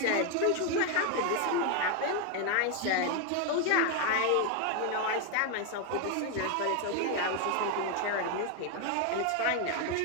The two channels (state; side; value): different; both; correlation 0.01